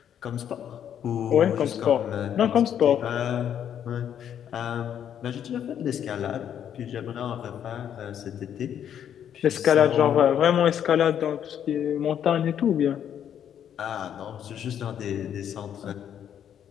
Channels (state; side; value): quieter; right; 9.4 dB